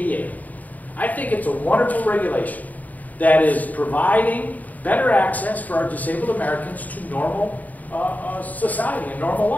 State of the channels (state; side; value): late; right; 0.077 ms